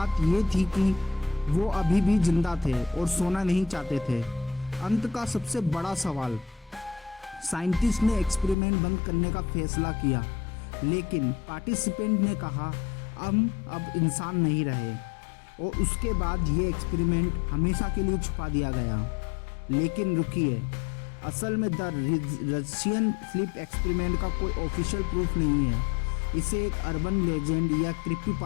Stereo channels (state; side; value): drops out; right; at 8.6 s